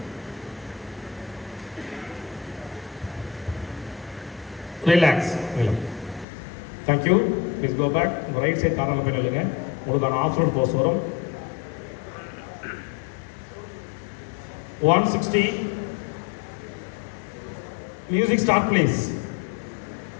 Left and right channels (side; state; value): right; drops out; at 6.2 s